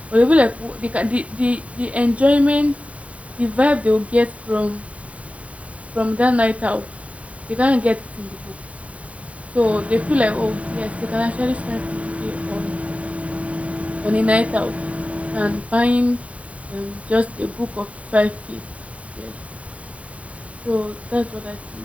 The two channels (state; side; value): late; left; 0.066 ms